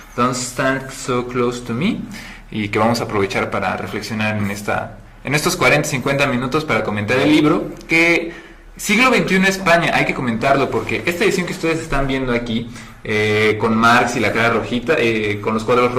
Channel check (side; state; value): both; identical; correlation 1.00